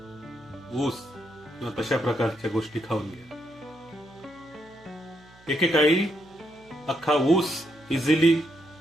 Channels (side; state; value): right; noise; hum, 27 dB below the sound